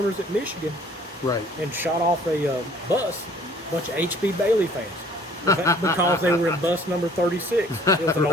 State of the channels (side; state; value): both; normal; correlation 0.55